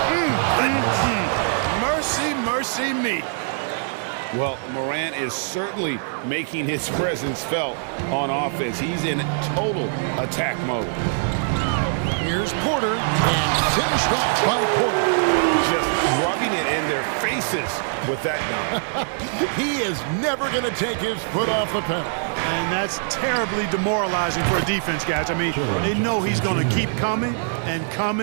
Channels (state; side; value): silent; left; 62 dB below the other